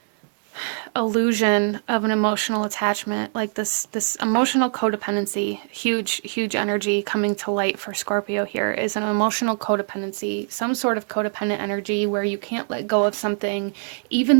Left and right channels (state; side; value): silent; left; digital silence